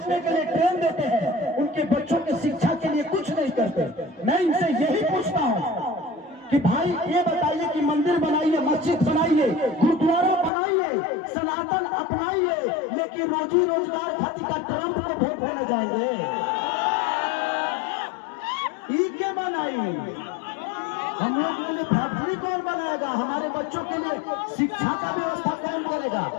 के लिए ट्रेन देते हैं, उनके बच्चों की शिक्षा के लिए कुछ नहीं करते। मैं इनसे यही पूछता हूँ कि भाई ये बताइए कि मंदिर बनाइए, मस्जिद बनाइए, गुरुद्वारा बनाइए, सनातन अपनाइए, लेकिन रोजी रोजगार खातिर का ट्रंप को वोट देने जाएंगे? ई के बनाइए, हम लोग के लिए फैक्ट्री कौन बनाएगा? हमारे बच्चों के लिए शिक्षा का व्यवस्था कौन करेगा?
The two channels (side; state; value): right; drops out; at 10.5 s